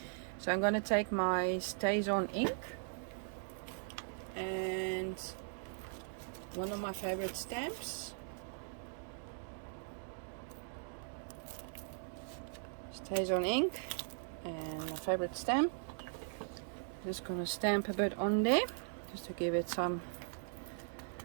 So I'm going to take my Stays On ink and one of my favorite stamps. Stays On ink and my favorite stamp. Just going to stamp a bit on there just to give it some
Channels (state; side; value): silent; left; digital silence